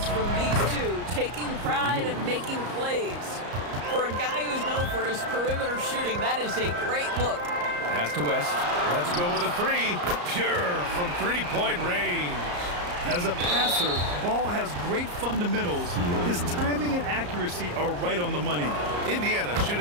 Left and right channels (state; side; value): late; left; 34 ms